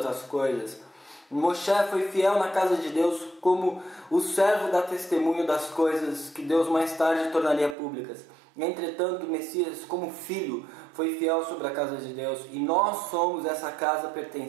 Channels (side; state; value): left; drops out; at 7.8 s